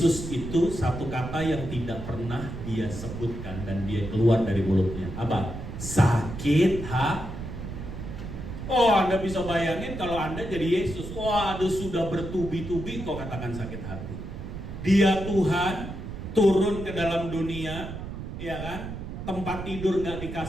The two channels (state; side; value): noise; right; rumble, 8 dB below the sound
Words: itu satu kata yang tidak pernah dia sebutkan dan dia keluar dari mulutnya. Apa? Sakit hati. Oh, Anda bisa bayangin kalau Anda jadi Yesus. Waduh, sudah bertubi-tubi kok katakan sakit hati. Dia Tuhan turun ke dalam dunia, ya kan? Tempat tidur nggak